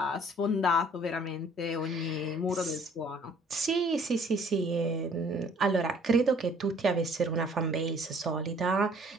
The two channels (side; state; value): both; normal; correlation 0.57